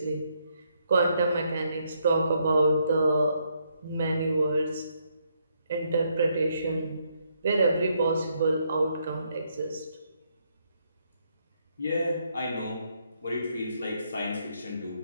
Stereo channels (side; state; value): both; inverted; correlation -0.75